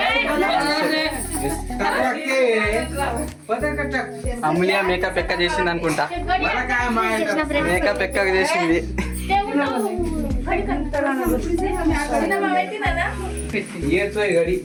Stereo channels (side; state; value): both; identical; correlation 1.00